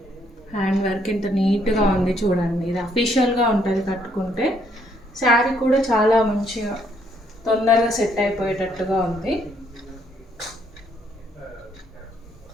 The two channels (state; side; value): normal; both; correlation 0.70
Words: హ్యాండ్ వర్క్ ఎంత నీట్గా ఉంది చూడండి. ఇది అఫీషియల్గా ఉంటుంది కట్టుకుంటే. శారీ కూడా చాలా మంచిగా తొందరగా సెట్ అయిపోయేటట్టుగా ఉంది.